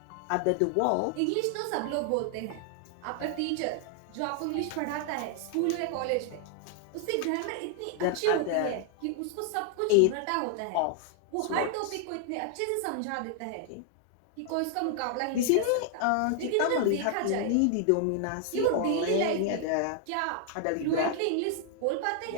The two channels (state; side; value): different; both; correlation 0.00